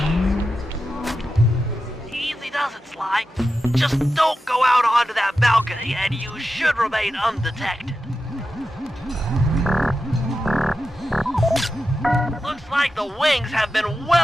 Easy does it, Sly. Just don't go out onto that balcony, and you should remain undetected. Looks like the wings have been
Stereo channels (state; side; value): normal; both; correlation 0.91